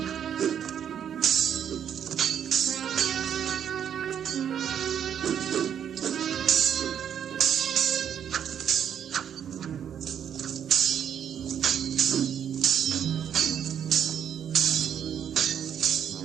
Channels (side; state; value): left; quieter; 8.9 dB